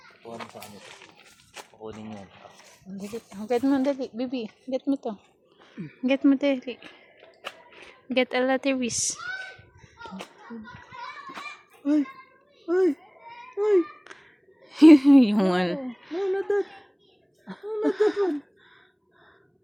Kuha sa kanya. Kukunin yan. Get mo, dali. Baby, get mo to. Get mo, dali. Get a lateris. Ay. Yung ano. No, not that one.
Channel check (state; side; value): identical; both; correlation 1.00